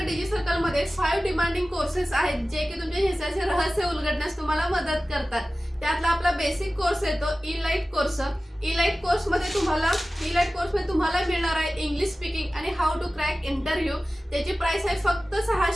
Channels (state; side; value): normal; both; correlation 0.96